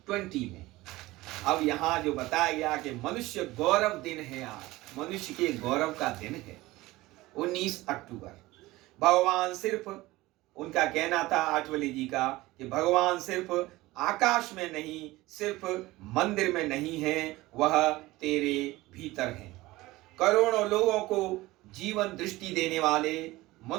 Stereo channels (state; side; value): quieter; left; 19.0 dB